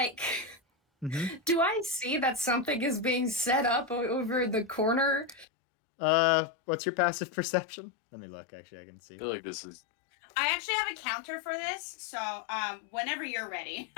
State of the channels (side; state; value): right; drops out; at 5.5 s